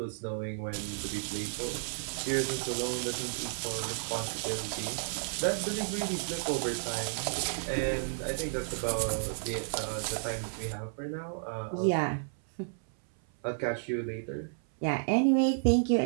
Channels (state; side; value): silent; left; 56 dB below the other